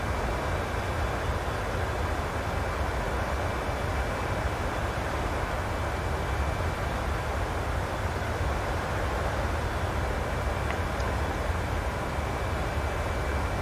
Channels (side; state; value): both; identical; correlation 1.00